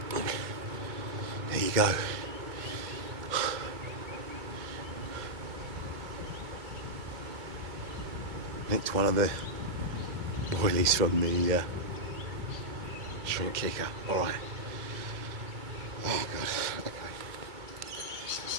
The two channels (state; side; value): late; left; 2.3 ms